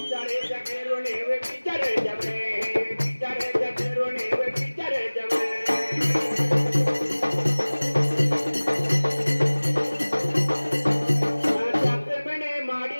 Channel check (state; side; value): inverted; both; correlation -1.00